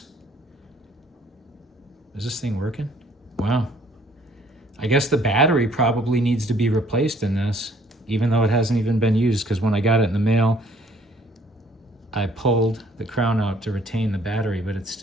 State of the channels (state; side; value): normal; both; correlation 0.60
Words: Is this thing working? Wow. I guess the battery probably needs to be replaced in this, even though it hasn't even been used, because when I got it in the mail, I pulled the crown out to retain the battery, but it